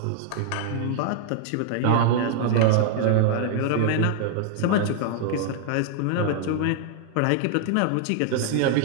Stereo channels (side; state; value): both; different; correlation 0.00